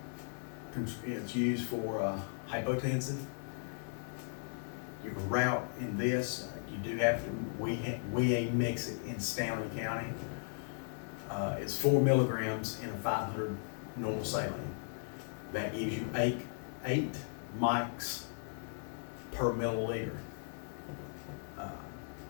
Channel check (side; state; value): right; silent; digital silence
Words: It's used for hypotensive. You can route in this. You do have to. We mix it in Stanley County. It's 4 milligrams in a 500 normal saline. That gives you 8 mics per milliliter.